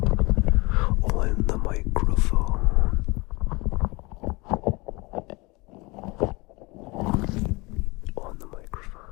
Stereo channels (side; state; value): right; quieter; 25.0 dB